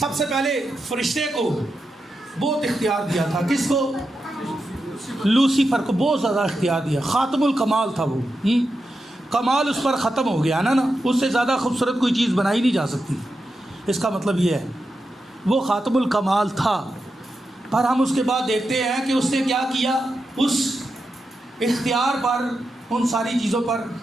سے پہلے فرشتے کو بہت اختیار دیا تھا۔ کس کو؟ لوسیفر کو بہت زیادہ اختیار دیا۔ خاتم الکمال تھا وہ، کمال اس پر ختم ہو گیا نا، اس سے زیادہ خوبصورت کوئی چیز بنائی نہیں جا سکتی۔ اس کا مطلب یہ ہے وہ خاتم الکمال تھا، پر ہم اس کے بعد دیکھتے ہیں کہ اس نے کیا کیا؟ اس اختیار پر، ان ساری چیزوں پر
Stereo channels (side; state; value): both; normal; correlation 0.88